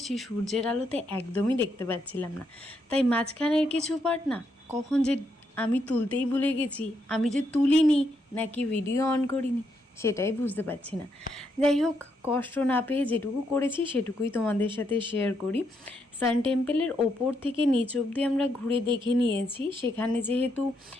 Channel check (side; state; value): both; normal; correlation 0.78